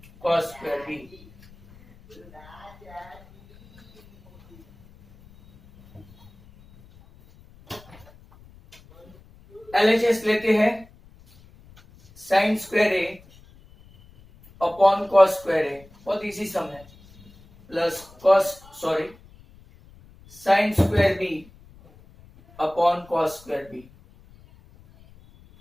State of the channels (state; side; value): noise; left; rumble, 25 dB below the sound